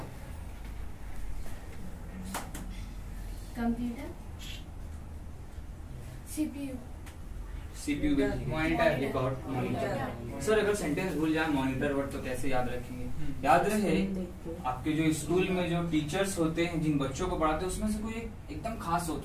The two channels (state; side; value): identical; both; correlation 1.00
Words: computer, CPU, CPU, monitor, record, monitor. Sir अगर सेंटेंस भूल जाए मॉनिटर वर्ड तो कैसे याद रखेंगे? याद रहे आपके जो स्कूल में जो टीचर्स होते हैं, जिन बच्चों को पढ़ाते हैं, उसमें से कोई एकदम खास